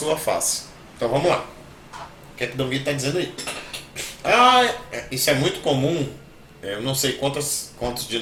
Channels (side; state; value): both; identical; correlation 1.00